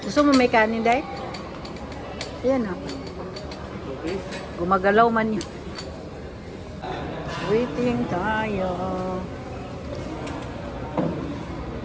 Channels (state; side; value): identical; both; correlation 1.00